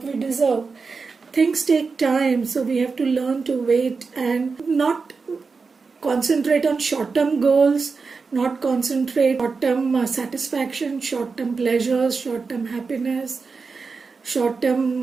we deserve. Things take time, so we have to learn to wait and not concentrate on short-term goals, not concentrate on short-term satisfaction, short-term pleasures, short-term happiness,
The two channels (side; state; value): left; quieter; 4.7 dB